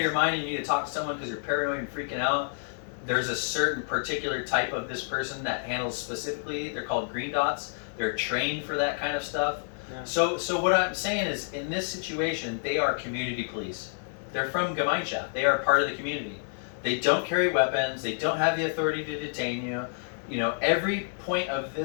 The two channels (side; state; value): right; silent; 59 dB below the other